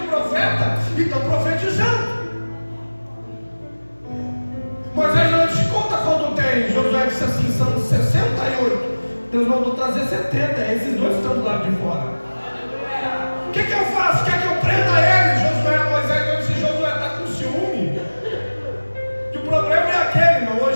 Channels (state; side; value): inverted; both; correlation -1.00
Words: profeta e estão profetizando. Moisés não disse: conta quanto tem. Josué disse assim: são 68. Deus mandou trazer 70. Esses 2 estão do lado de fora. O que eu faço? Quer que eu prenda eles? Moisés disse: Josué está com ciúme. Que o problema é aquele, não.